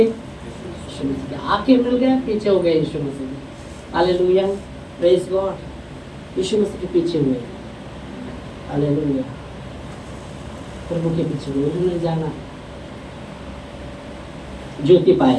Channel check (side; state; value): both; identical; correlation 1.00